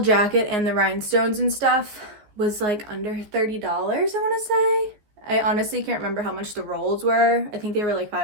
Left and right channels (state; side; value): late; left; 14 ms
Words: and the rhinestones and stuff was like under $30, I want to say. I honestly can't remember how much the rolls were. I think they were like